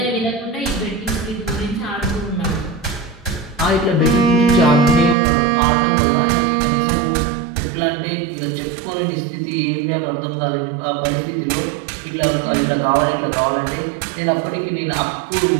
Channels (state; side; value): drops out; left; at 5.2 s